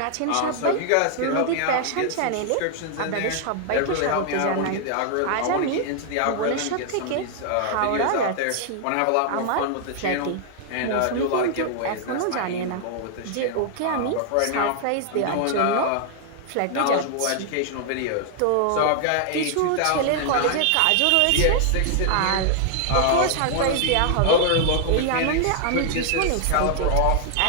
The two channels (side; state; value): both; different; correlation 0.00